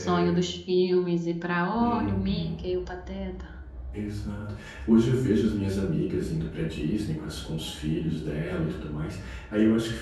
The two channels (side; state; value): both; identical; correlation 1.00